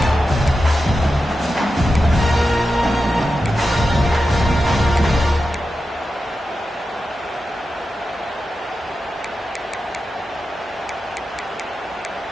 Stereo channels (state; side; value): normal; both; correlation 0.91